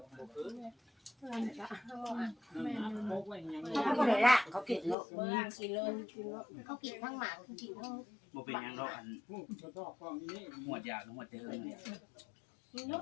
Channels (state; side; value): drops out; right; at 5.0 s